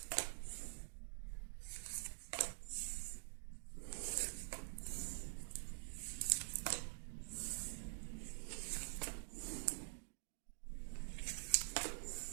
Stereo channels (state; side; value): silent; left; digital silence